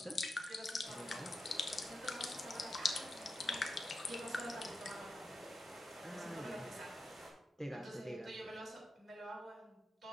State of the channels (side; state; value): both; normal; correlation 0.89